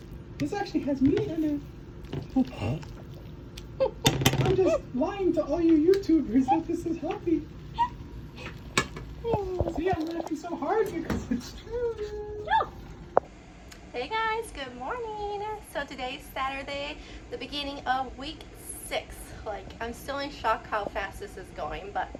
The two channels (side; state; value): both; identical; correlation 1.00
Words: This actually has meat in it. I'm just lying to all you YouTubers that this is healthy. See, I'm laughing so hard because it's true. Hey guys, good morning. So today's Saturday, the beginning of week 6. Like, I'm still in shock how fast this is going, but